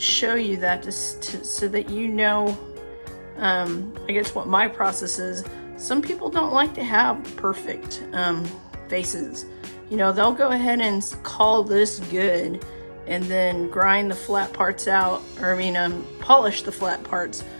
show you that so that you know, I guess what my process is. Some people don't like to have perfect faces. You know, they'll go ahead and call this good and then grind the flat parts out, or polish the flat parts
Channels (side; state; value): both; inverted; correlation -1.00